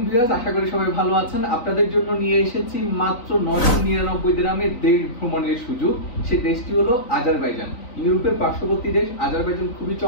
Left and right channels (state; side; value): late; right; 3.9 ms